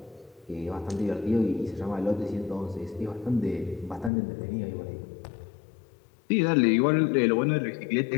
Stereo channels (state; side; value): drops out; right; at 4.1 s